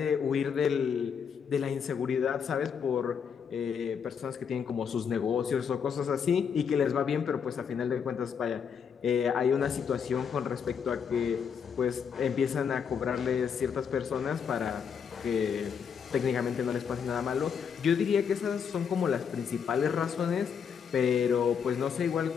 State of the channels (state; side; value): quieter; right; 7.0 dB